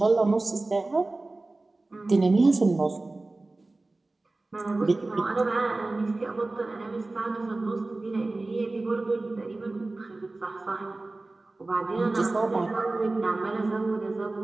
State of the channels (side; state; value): left; quieter; 3.1 dB